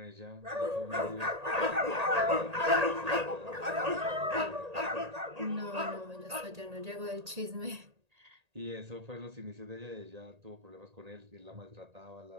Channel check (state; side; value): late; left; 1.8 ms